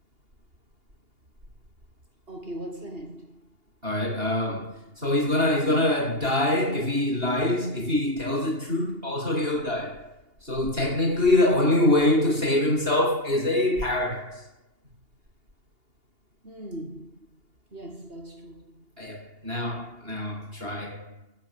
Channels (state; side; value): late; left; 2.8 ms